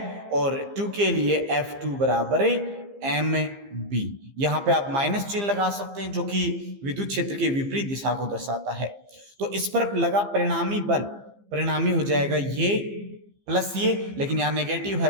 और 2 के लिए F2 बराबर mb। यहां पे आप माइनस चिन्ह लगा सकते हैं जो कि विद्युत क्षेत्र के विपरीत दिशा को दर्शाता है। तो इस पर लगा परिणामी बल, परिणामी हो जाएगा ये प्लस ये, लेकिन यहाँ नेगेटिव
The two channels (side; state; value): left; late; 15 ms